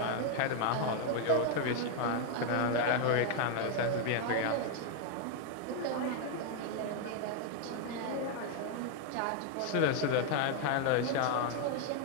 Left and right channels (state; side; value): different; both; correlation 0.00